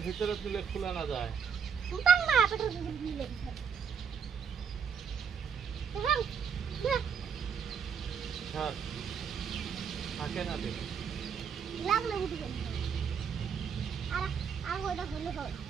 ভিতরে তুলে খোলা না যায় থাকে না দে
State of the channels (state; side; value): quieter; left; 6.9 dB